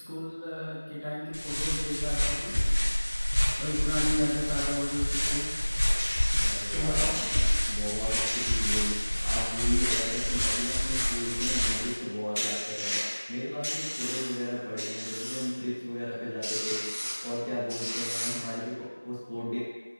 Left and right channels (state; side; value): inverted; both; correlation -1.00